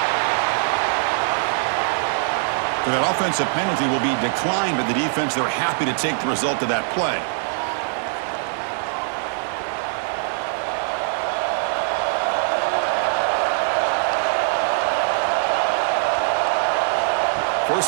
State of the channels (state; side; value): silent; left; digital silence